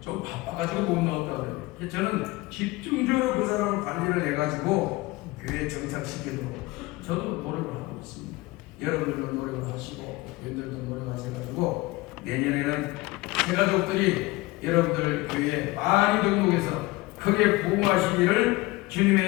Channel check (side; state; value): right; quieter; 21.0 dB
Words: 좀 바빠가지고 못 나왔다고 그래요. 저는 집중적으로 그 사람을 관리를 해가지고 교회에 정착시키도록 저도 노력을 하고 있습니다. 여러분들도 노력을 하시고 여러분들도 노력하셔가지고 내년에는 새가족들이 여러분들 교회에 많이 등록해서 크게 부흥하시기를